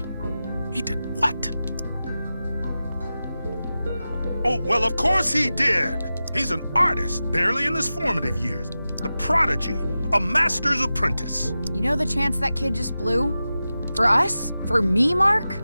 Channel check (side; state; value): both; inverted; correlation -0.94